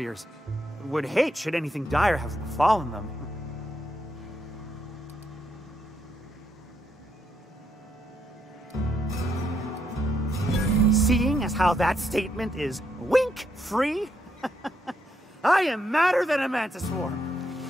Would hate should anything dire have befallen them. Seeing as how that statement is wink-free, I am madder than a mantis swarm,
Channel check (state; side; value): normal; both; correlation 0.78